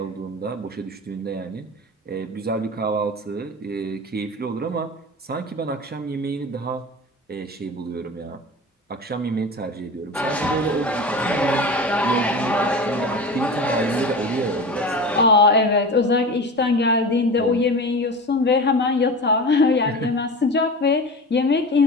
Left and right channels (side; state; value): both; normal; correlation 0.31